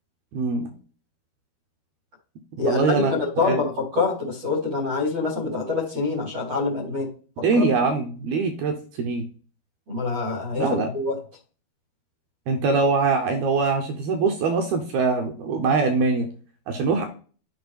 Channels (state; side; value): late; left; 12 ms